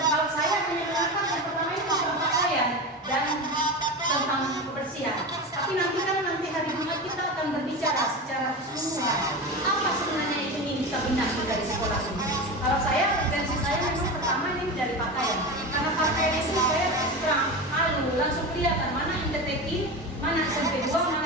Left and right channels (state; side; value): normal; both; correlation 0.24